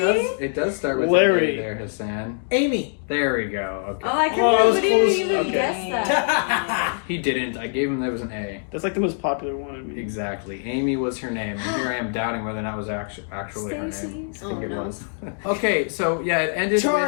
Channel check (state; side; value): silent; right; digital silence